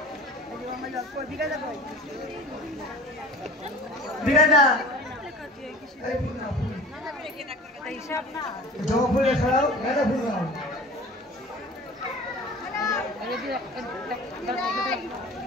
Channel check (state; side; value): normal; both; correlation 0.41